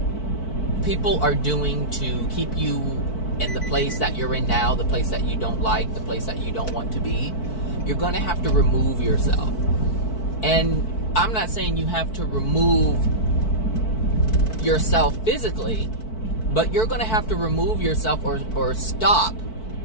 people are doing to keep you in the place that you're in now, the place that you don't like, the place that you don't want to be, you're going to have to remove yourself. And I'm not saying you have to remove yourself physically, but you're going to have to remove yourself or stop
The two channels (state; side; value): late; right; 4.5 ms